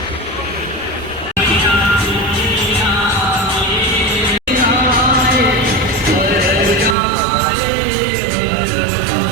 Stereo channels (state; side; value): drops out; left; at 7.0 s